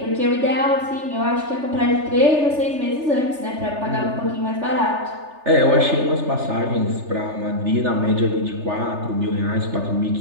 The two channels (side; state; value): left; late; 3.3 ms